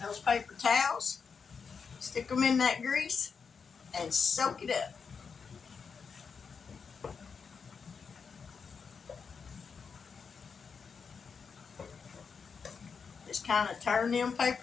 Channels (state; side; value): quieter; right; 5.8 dB